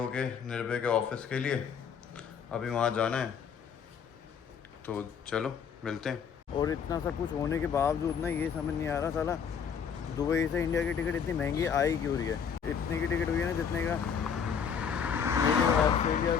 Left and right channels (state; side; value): quieter; right; 7.0 dB